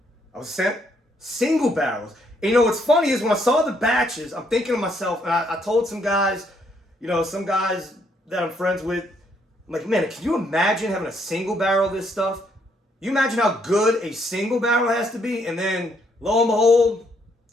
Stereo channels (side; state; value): both; normal; correlation 0.71